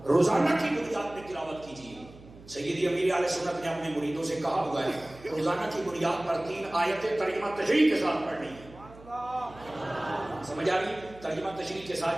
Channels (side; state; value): right; noise; hum, 20 dB below the sound